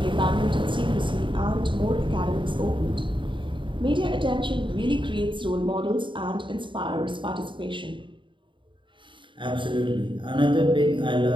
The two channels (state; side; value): late; left; 0.24 ms